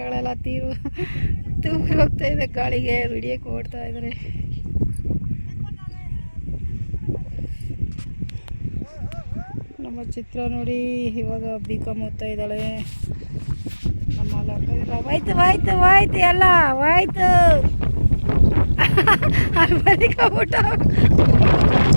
ತೂರಿ ಹೋಗ್ತಾ ಇದೆ ಗಾಳಿಗೆ. ವಿಡಿಯೋಕ್ಕೆ ಓಡ್ತಾ ಇದ್ದಾರೆ. ನಮ್ಮ ಚಿತ್ರ ನೋಡಿ, ಇವಾಗ B.Com ಓದ್ತಾ ಇದ್ದಾಳೆ. ನಮ್ಮ ಲಕ್ಕದಿಲ್ಲ. ಹೋಯ್ತು ಎಲ್ಲ ಹೋಯ್ತು. ಮನೆ ಕಬಿಟ್ಟ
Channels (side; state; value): both; inverted; correlation -1.00